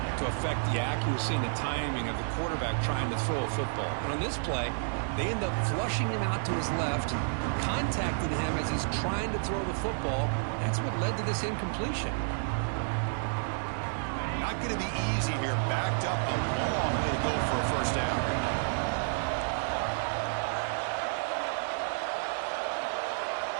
to affect the accuracy and the timing of the quarterback trying to throw a football. And on this play, they end up flushing him out to his left, contacted him as he's trying to throw the football. That's what led to this incompletion. Not going to be easy here. Backed up a long way to go for a first down.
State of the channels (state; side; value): silent; left; digital silence